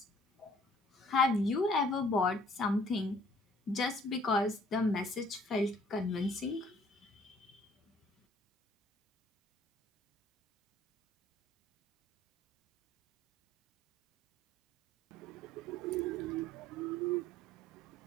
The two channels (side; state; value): both; normal; correlation 0.57